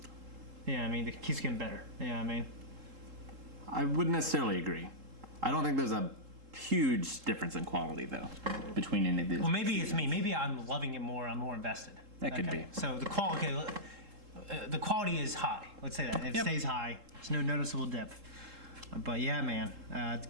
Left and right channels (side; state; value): left; late; 3.7 ms